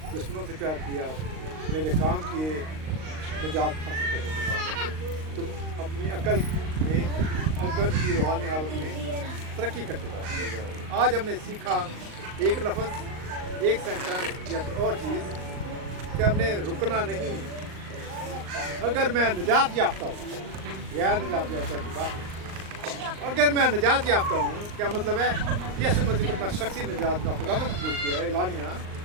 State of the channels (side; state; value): left; late; 38 ms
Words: दुश्मनों से प्यार किया, मेरे काम किए, निजात हासिल करने के बाद तुम अपनी अकल में, अकल की रूहानी हालत में तरक्की करते जाओ। आज हमने सीखा एक लफ्ज़, एक सेंटेंस या और चीज़ कि हमने रुकना नहीं। अगर मैं निजात याफ्ता हूँ, या निजात याफ्ता की बात नहीं, अगर मैं निजात याफ्ता हूँ, क्या मतलब है? यीशु मसीह को अपना शख्सी निजात का खुदा कबूल किया है, एलानिया